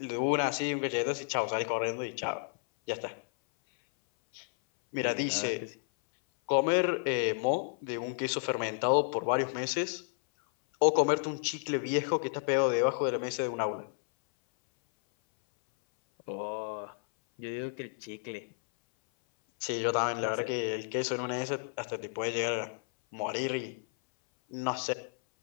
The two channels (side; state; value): right; silent; 57 dB below the other